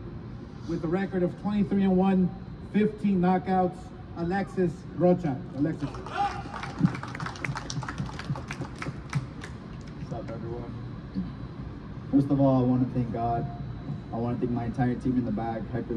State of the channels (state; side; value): identical; both; correlation 1.00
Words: with a record of 23-1, 15 knockouts, Alexis Rocha. Alexis. What's up, everyone? First of all, I want to thank God. I want to thank my entire team in the back, Hector